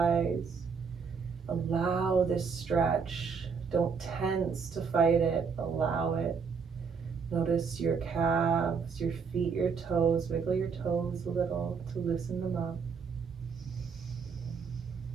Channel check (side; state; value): left; quieter; 5.7 dB